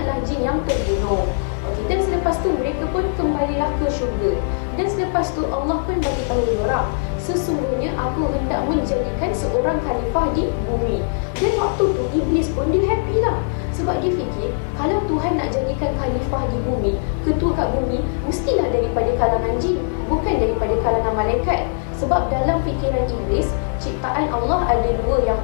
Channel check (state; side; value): silent; right; digital silence